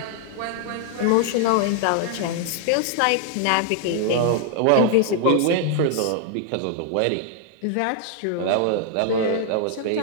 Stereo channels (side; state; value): both; different; correlation 0.00